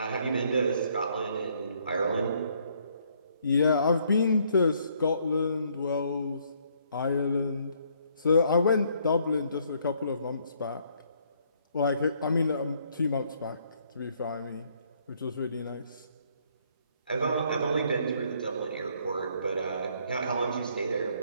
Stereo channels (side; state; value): both; inverted; correlation -0.67